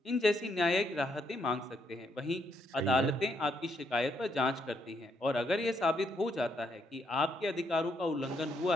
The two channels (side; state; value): both; normal; correlation 0.75